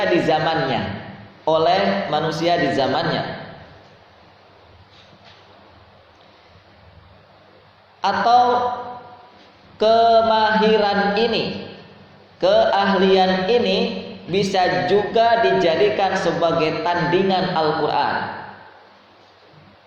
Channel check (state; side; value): identical; both; correlation 1.00